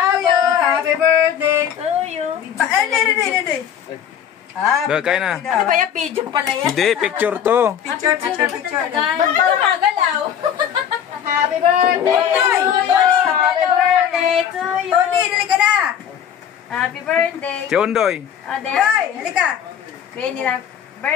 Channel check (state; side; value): quieter; right; 8.9 dB